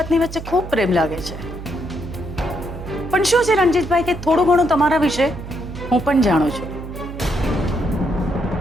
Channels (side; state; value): right; noise; hum, 11 dB below the sound